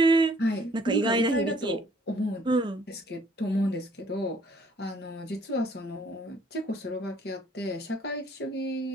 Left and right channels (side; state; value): both; normal; correlation 0.61